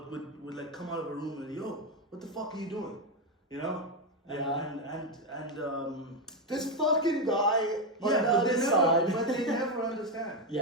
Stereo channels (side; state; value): both; normal; correlation 0.07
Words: come out of her room and, yo, what the fuck are you doing? And this fucking guy on the but other side. but they never understand.